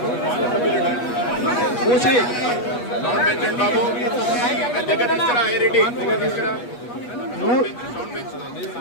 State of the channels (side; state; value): right; late; 8.3 ms